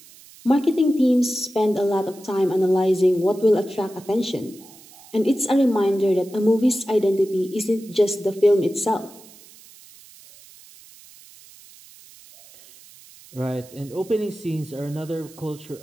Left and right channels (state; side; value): noise; right; hiss, 23 dB below the sound